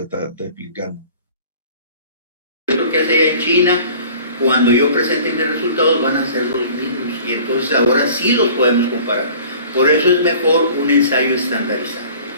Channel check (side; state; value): both; inverted; correlation -0.46